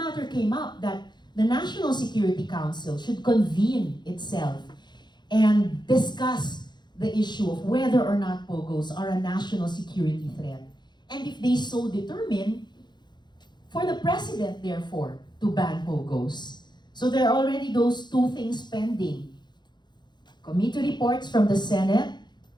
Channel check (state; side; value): late; right; 0.21 ms